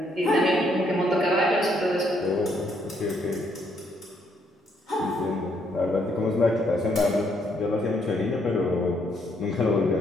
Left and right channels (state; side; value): normal; both; correlation 0.72